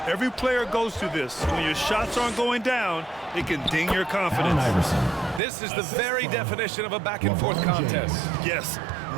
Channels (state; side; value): drops out; left; at 5.4 s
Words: Every player goes through this. When your shots aren't going down, it can ding your confidence. This is the very definition of a back-and-forth contest. Yes,